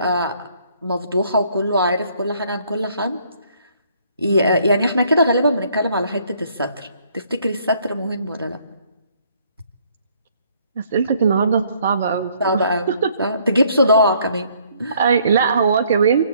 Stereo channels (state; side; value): inverted; both; correlation -0.64